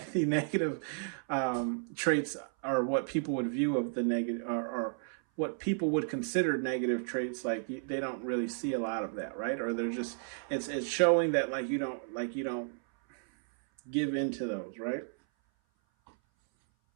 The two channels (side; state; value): left; silent; 56 dB below the other